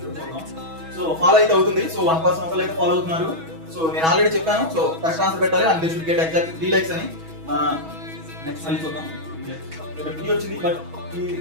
చూద్దాం. సో ఫాలో అయితే అవుతుంది. సో 1% ఒకళ్ళు అయితే ఫాలో అవుతున్నారు. సో నేను ఆల్రెడీ చెప్పాను. సో కరెక్ట్ ఆన్సర్ పెట్టాలి and they should get exact 3 likes అని. నెక్స్ట్ మళ్ళీ చూద్దాం. ఇక్కడ 3 వచ్చింది but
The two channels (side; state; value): left; late; 6.2 ms